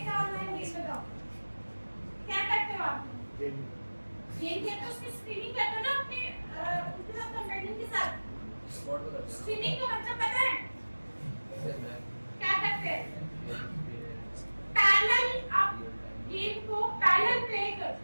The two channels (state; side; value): inverted; both; correlation -1.00